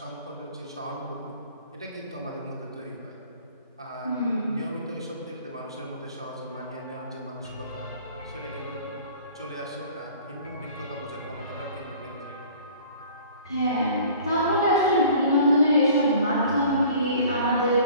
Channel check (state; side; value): inverted; both; correlation -0.48